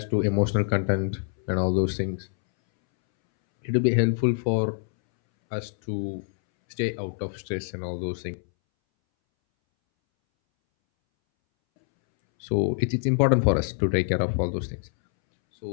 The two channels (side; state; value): right; silent; 61 dB below the other